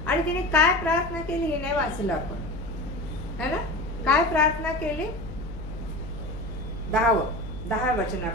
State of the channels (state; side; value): noise; left; hum, 10 dB below the sound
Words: आणि तिने काय प्रार्थना केली हे नाही वाचलं आपण, है ना. काय प्रार्थना केली, 10